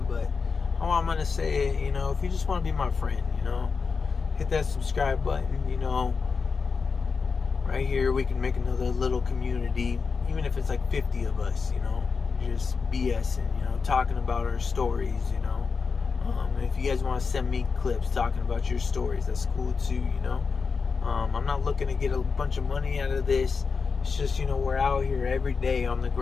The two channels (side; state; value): right; quieter; 5.0 dB